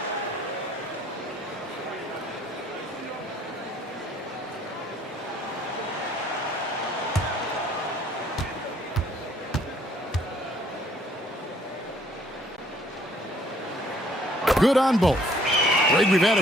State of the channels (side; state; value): both; normal; correlation 0.62